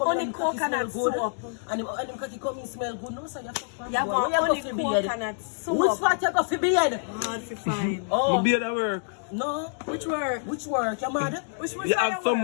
only coconut soap. And him cocky coming smell good, no, so you fuck you have only coconut soap. Which part you got for beard? Hard to find. My beard at work. No. Which work? You mad? Which you have some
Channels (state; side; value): silent; right; digital silence